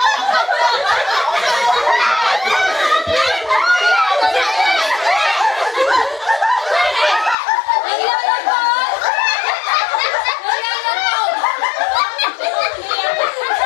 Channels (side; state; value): right; drops out; at 7.4 s